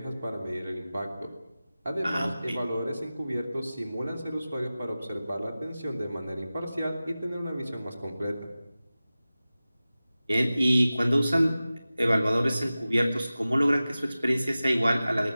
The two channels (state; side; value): inverted; both; correlation -0.96